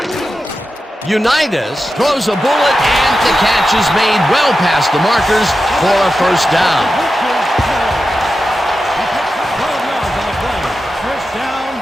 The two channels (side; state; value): both; normal; correlation 0.91